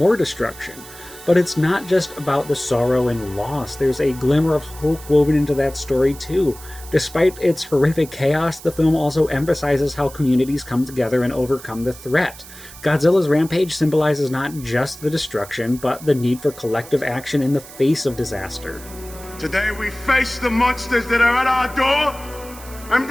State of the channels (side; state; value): right; noise; hiss, 17 dB below the sound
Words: destruction. But it's not just about the sorrow and loss, there's a glimmer of hope woven into that story too. Despite its horrific chaos, the film also emphasizes how communities come together and overcome the threat. Godzilla's rampage symbolizes not just the destruction, but the need for collective action in the face of disaster. Today we face the monsters that are at our door and